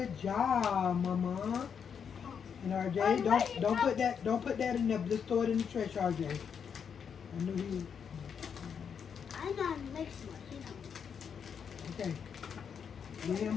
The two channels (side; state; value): right; quieter; 7.1 dB